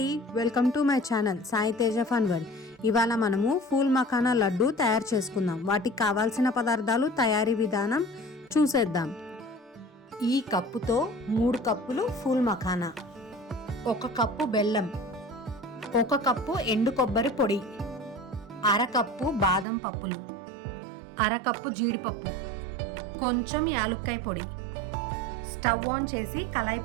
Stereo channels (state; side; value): drops out; left; at 19.7 s